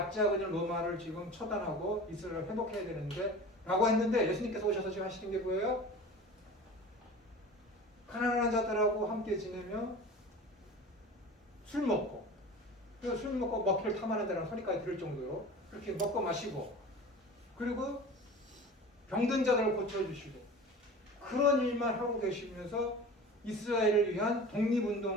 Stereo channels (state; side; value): normal; both; correlation 0.37